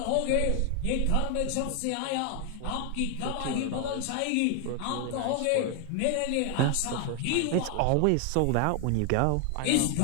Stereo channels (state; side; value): different; both; correlation 0.00